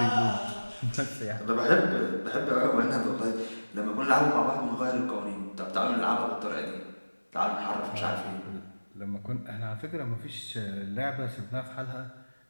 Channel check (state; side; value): inverted; both; correlation -1.00